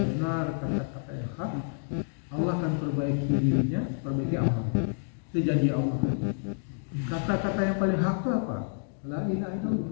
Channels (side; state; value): right; silent; digital silence